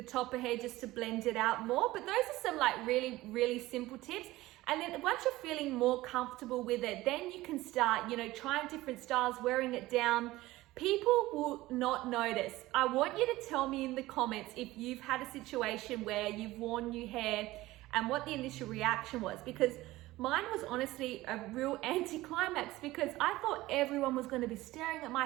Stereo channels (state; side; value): quieter; left; 17.9 dB